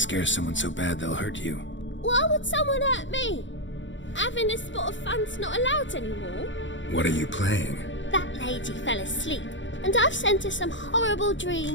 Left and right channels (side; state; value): right; late; 0.55 ms